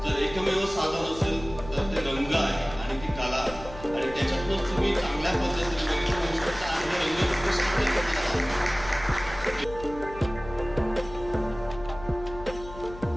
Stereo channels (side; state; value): left; noise; hum, 14 dB below the sound